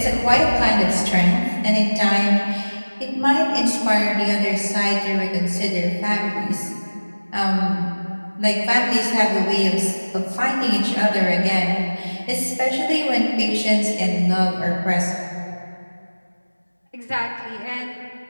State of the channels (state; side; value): inverted; both; correlation -1.00